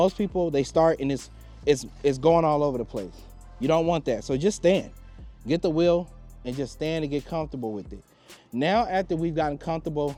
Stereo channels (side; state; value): both; identical; correlation 1.00